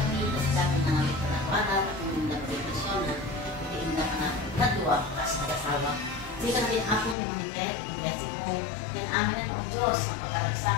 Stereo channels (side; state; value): right; drops out; at 7.2 s